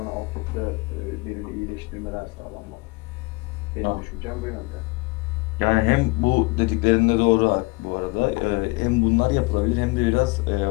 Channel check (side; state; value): right; quieter; 25.6 dB